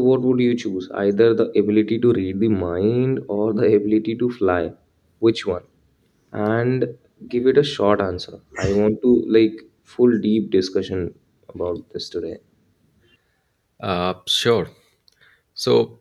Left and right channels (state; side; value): identical; both; correlation 1.00